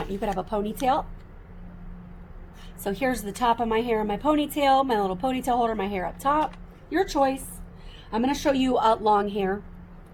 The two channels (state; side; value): identical; both; correlation 1.00